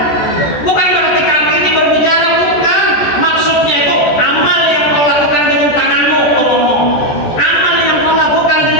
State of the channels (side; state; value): right; late; 14 ms